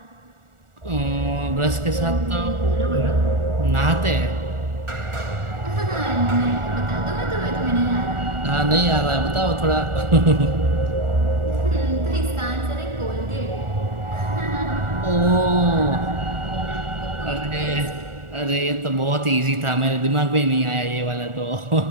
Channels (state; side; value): late; left; 1.4 ms